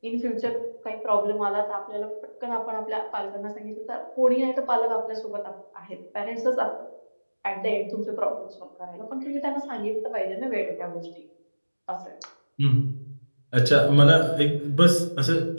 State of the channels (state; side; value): inverted; both; correlation -1.00